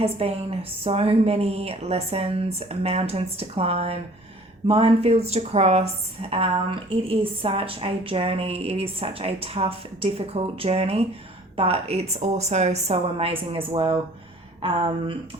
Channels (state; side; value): normal; both; correlation 0.52